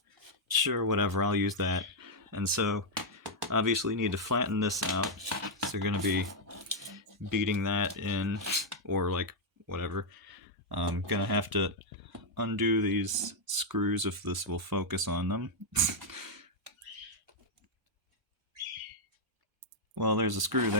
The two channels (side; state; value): both; normal; correlation -0.03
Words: sure, whatever, I'll use that. And so obviously need to flatten this out, so you're going to be beating that in, or like whatever. I'm going to have to undo these screws if this will focus on them. Well, there's a screw